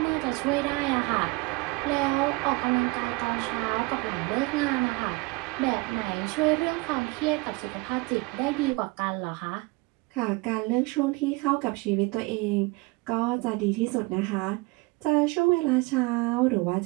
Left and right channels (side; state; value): left; quieter; 24.9 dB